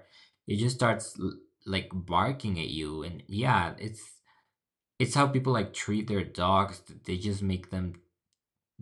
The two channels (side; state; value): both; identical; correlation 1.00